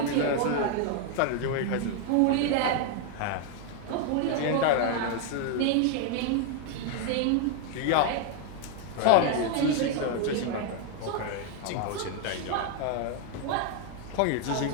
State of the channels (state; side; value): different; both; correlation 0.00